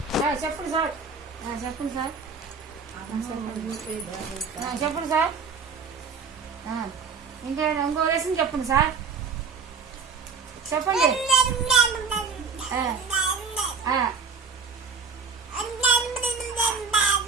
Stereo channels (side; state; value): left; quieter; 5.2 dB